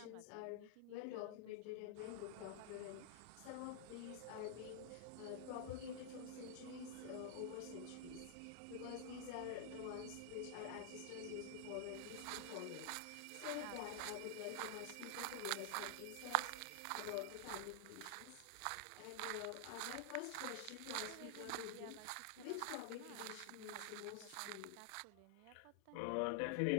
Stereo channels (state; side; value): different; both; correlation 0.00